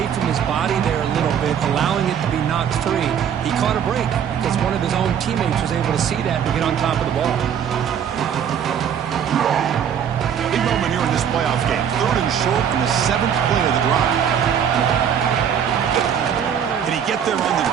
from his body there a little bit, allowing it to be knocked free. He caught a break because one of his own teammates was able to see that and get on top of the ball. Big moment here in this playoff game. 3rd and short in the 7th play of the drive. Can he get there on the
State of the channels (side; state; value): left; quieter; 8.4 dB